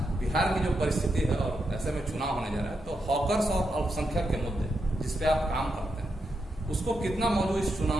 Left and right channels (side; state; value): both; normal; correlation 0.84